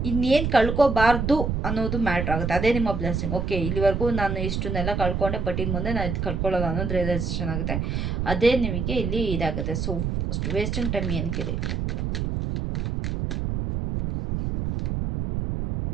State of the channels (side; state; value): right; noise; rumble, 1 dB below the sound